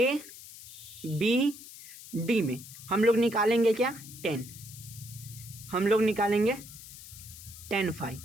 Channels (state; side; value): noise; left; hiss, 16 dB below the sound